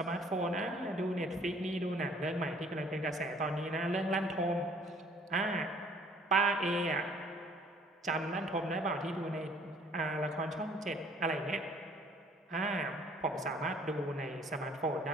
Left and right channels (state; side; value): normal; both; correlation 0.58